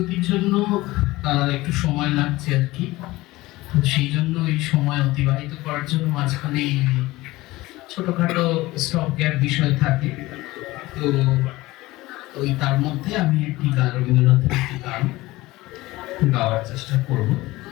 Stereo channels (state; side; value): quieter; right; 19.2 dB